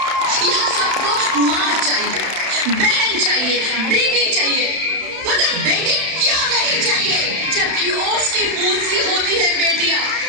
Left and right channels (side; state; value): left; late; 32 ms